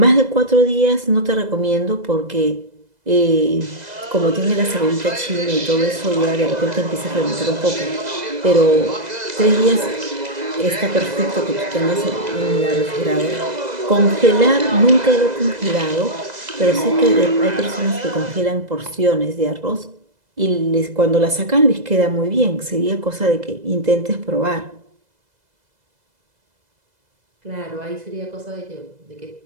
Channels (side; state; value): left; late; 2.0 ms